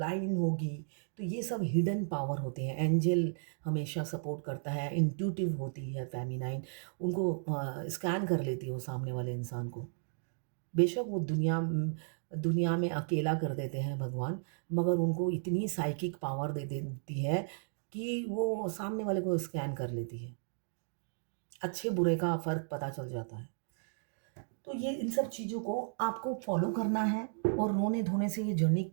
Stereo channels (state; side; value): silent; left; digital silence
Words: होगी, तो ये सब हिडन पावर होते हैं। एंजल हमेशा सपोर्ट करता है, इंट्यूटिव होती है फ़ेमिनाइन, उनको स्कैन कर लेती है वो सामने वाले इंसान को। बेशक वो दुनिया में अकेला कर देते हैं भगवान, मगर उनको इतनी साइकिक पावर दे देती है कि वो सामने वाले को स्कैन कर लेती है। अच्छे-बुरे का फ़र्क पता चल जाता है। तो ये इन सब चीज़ों को आपको फ़ॉलो करना है, और रोने-धोने से ये जर्नी